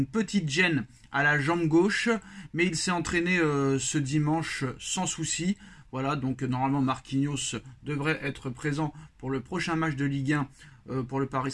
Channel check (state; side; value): identical; both; correlation 1.00